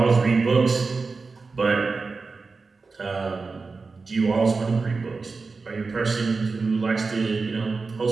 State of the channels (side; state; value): left; quieter; 4.3 dB